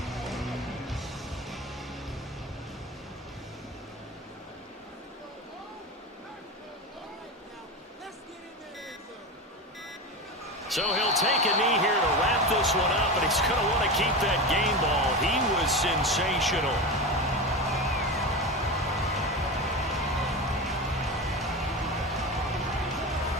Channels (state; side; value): normal; both; correlation 0.23